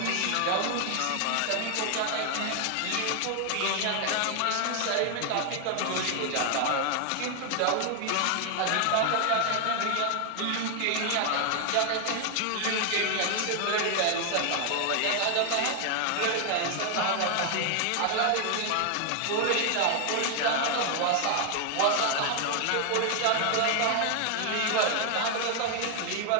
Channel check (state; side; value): different; both; correlation 0.00